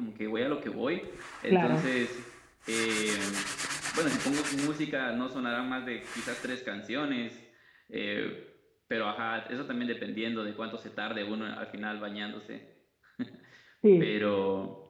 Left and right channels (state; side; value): identical; both; correlation 1.00